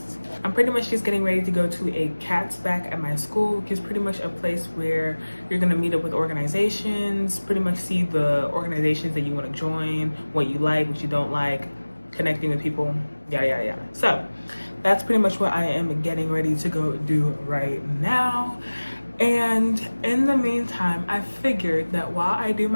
I'm pretty much just getting ready to go to a CATS back at my school, which is pretty much a place where you're gonna meet up with organizations, pretty much see the organizations that you wanna join, what you like, what you don't like, connecting with people, yada, yada, yada. So that's pretty much what I am getting ready to go do right now. And in the meantime, I figured that while I do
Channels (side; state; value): both; inverted; correlation -1.00